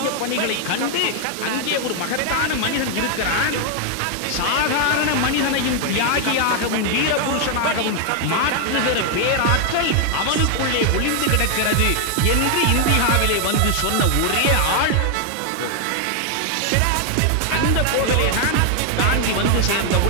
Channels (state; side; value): different; both; correlation 0.00